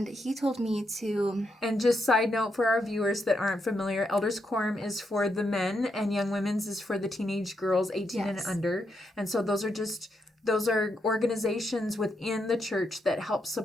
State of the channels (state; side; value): normal; both; correlation 0.81